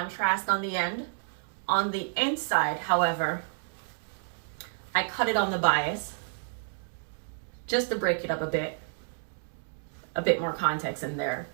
on the end. On the inside, however, I cut it on the bias just to break it up a bit more context in there.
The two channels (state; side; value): silent; left; digital silence